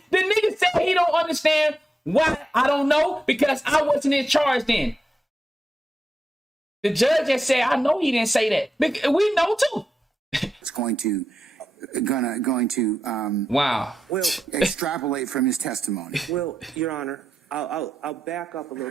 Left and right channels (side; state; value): both; normal; correlation 0.87